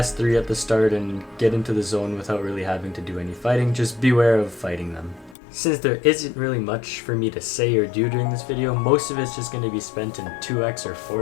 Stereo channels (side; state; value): right; drops out; at 5.4 s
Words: 3 at the start and get into the zone without really having to do any fighting. Just beware of fighting them. Since there isn't really much for me to say or do during this video, most of it's just going to be spent in 2x or